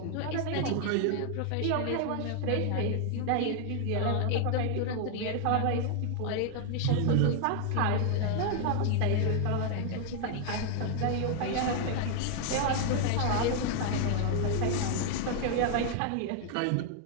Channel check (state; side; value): different; both; correlation 0.00